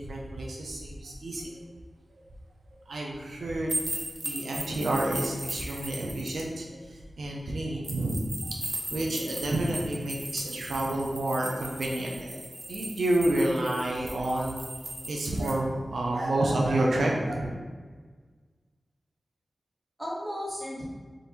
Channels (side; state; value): both; normal; correlation 0.93